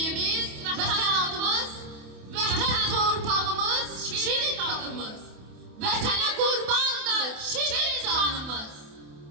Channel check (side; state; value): left; late; 28 ms